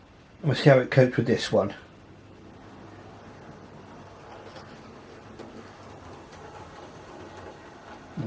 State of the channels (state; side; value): identical; both; correlation 1.00